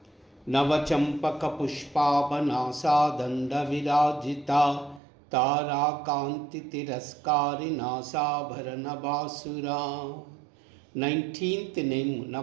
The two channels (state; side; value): drops out; left; at 5.0 s